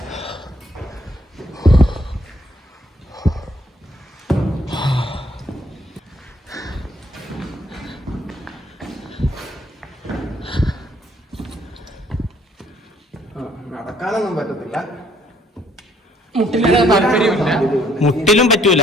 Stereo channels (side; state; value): both; normal; correlation 0.65